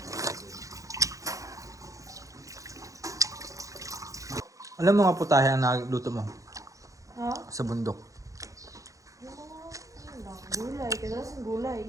Alam mo nga putahe ang nagluto mo Ha? sa bundok. Yung mga, ano lang, gulay. Kadalasan gulay,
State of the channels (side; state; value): left; late; 0.16 ms